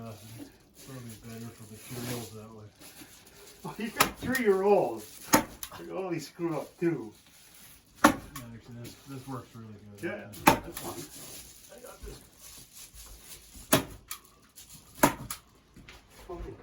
it's probably better for materials that way. Oh, you got 3-year-olds. Oh, they screw up too. Yeah, actually, this works really good. Yeah, that's fine. I got this. Okay.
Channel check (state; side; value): identical; both; correlation 1.00